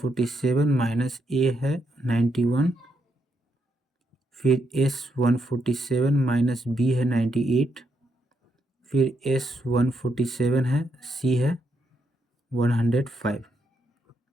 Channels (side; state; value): both; normal; correlation 0.78